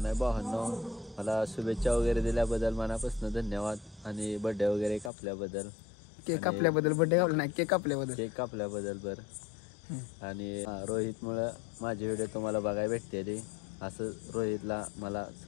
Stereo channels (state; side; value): drops out; right; at 5.1 s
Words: नाही भावांनो मला शुभेच्छा वगैरे दिल्याबद्दल मनापासून धन्यवाद. आणि बर्थडे वगैरे कापल्याबद्दल. केक कापल्याबद्दल बर्थडे कापला नाही केक कापल्याबद्दल बरं. आणि रोहित मुळे माझे व्हिडिओ तुम्हाला बघायला भेटते. असं रोहितला मला